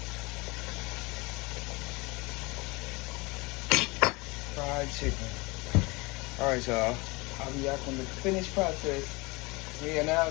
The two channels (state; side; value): quieter; right; 25.3 dB